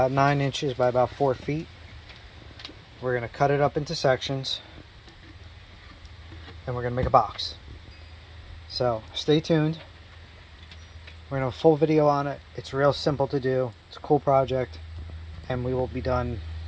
9 inches by about 4 feet. We're going to cut it up into sections and we're going to make a box. So stay tuned. We're going to have a full video on it. It's real simple to do. It's a cool project and we will be done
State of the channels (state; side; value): identical; both; correlation 1.00